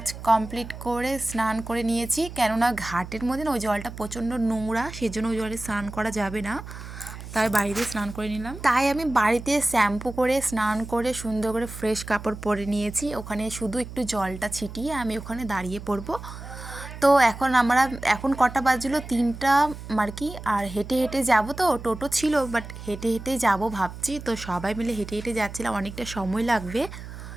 কমপ্লিট করে স্নান করে নিয়েছি, কেননা ঘাটের মধ্যে না ওই জলটা প্রচণ্ড নোংরা, সেজন্য ওই জলে স্নান করা যাবে না। তাই বাড়িতে স্নান করে নিলাম। তাই আমি বাড়িতে শ্যাম্পু করে স্নান করে সুন্দর করে ফ্রেশ কাপড় পরে নিয়েছি। ওখানে শুধু একটু জলটা ছিটিয়ে আমি ওখানে দাঁড়িয়ে পড়বো। তো এখন কটা বাজলো? 3টা আর কি। আর হেঁটে হেঁটে যাব, তো টোটো ছিল বাট হেঁটে হেঁটেই যাব ভাবছি। তো সবাই মিলে হেঁটে হেঁটে যাচ্ছিলাম, অনেকটা সময় লাগবে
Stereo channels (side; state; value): right; noise; hum, 12 dB below the sound